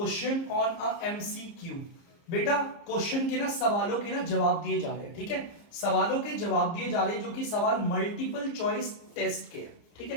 on a MCQ, बेटा क्वेश्चन के ना सवालों के ना जवाब दिए जा रहे हैं। ठीक है, सवालों के जवाब दिए जा रहे हैं जो कि सवाल मल्टीपल चॉइस टेस्ट के हैं। ठीक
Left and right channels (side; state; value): right; late; 29 ms